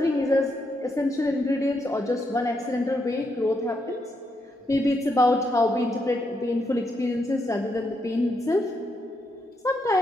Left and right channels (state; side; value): normal; both; correlation 0.80